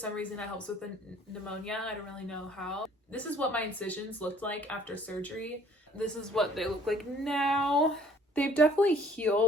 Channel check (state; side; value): normal; both; correlation 0.56